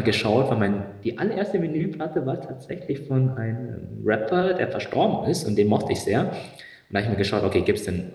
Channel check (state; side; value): identical; both; correlation 1.00